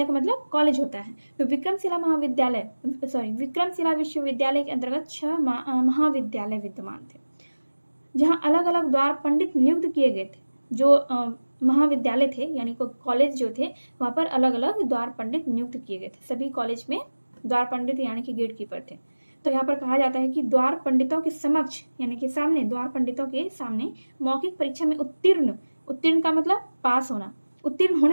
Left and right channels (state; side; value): inverted; both; correlation -1.00